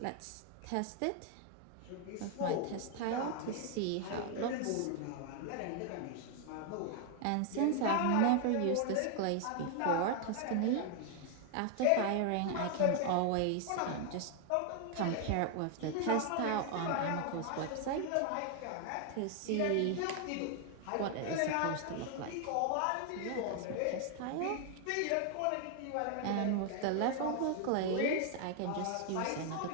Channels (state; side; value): different; both; correlation 0.00